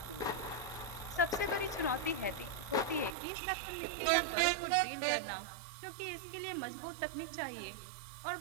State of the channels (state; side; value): drops out; left; at 3.2 s